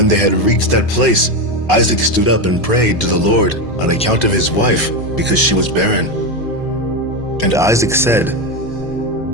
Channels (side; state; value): both; normal; correlation 0.13